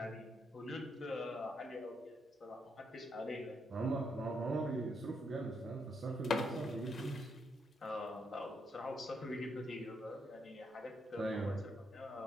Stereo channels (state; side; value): normal; both; correlation 0.78